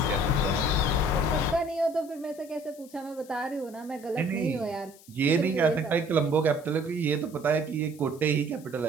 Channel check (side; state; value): left; noise; hiss, 23 dB below the sound